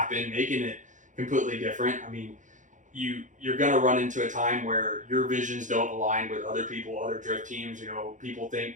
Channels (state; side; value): late; left; 0.36 ms